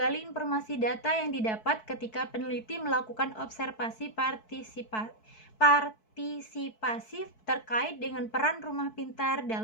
informasi data yang didapat ketika peneliti melakukan observasi partisipasif terkait dengan peran rumah pintar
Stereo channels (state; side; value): late; right; 4.6 ms